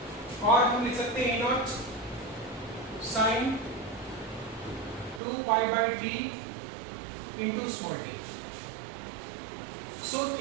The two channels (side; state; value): left; drops out; at 5.2 s